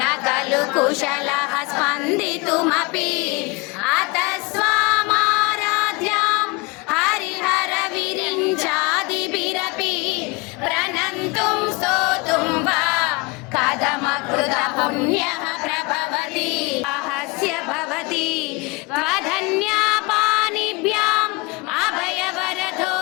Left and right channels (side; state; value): right; quieter; 26.1 dB